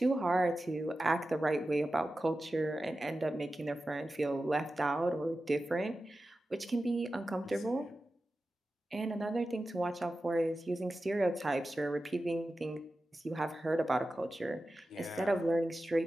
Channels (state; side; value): normal; both; correlation 0.93